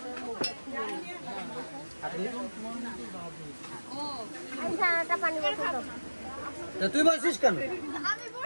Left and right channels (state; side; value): inverted; both; correlation -1.00